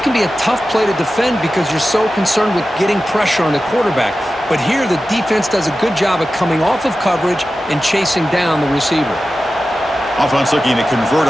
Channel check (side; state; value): both; normal; correlation 0.94